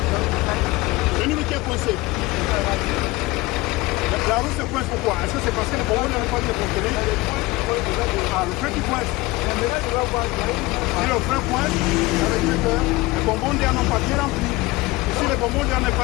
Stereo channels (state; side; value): quieter; right; 20.9 dB